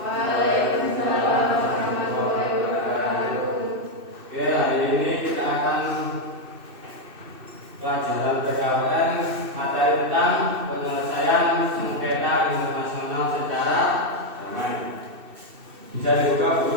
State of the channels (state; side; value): late; left; 2.6 ms